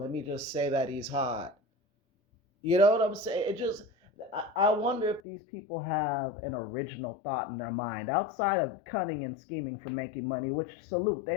me just say that he's hot. You know what I'm saying? It just, I wonder if these people have an original thought in their mind outside of cunning and scheming for making money, which salute,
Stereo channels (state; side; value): drops out; right; at 5.2 s